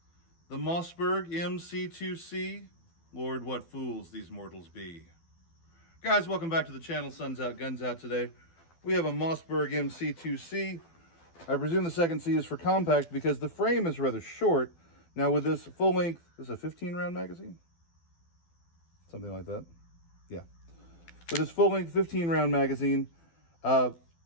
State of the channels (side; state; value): right; late; 12 ms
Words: The Mossberg MC2C, Lord, what fools these mortals be. Guys, welcome back to the channel. Sun's Out, Guns Out today. We have a Mossberg MC2C. I presume the second C is for compact because the frame is rather short. Now with this full length, this is a 15 round magazine? Something like that. Yeah. With this full length 15 round magazine,